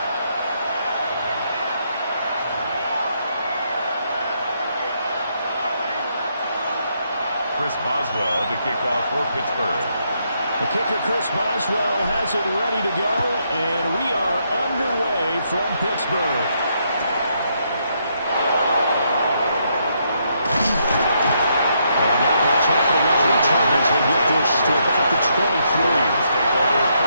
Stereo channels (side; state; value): both; inverted; correlation -0.76